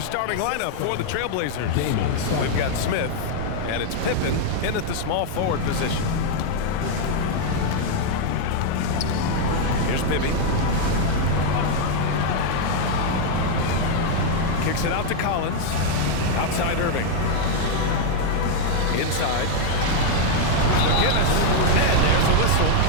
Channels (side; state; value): both; different; correlation 0.00